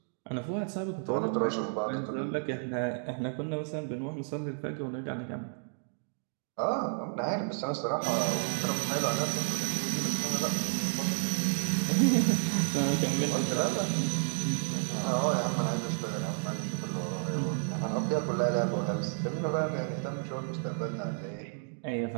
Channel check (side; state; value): left; silent; 57 dB below the other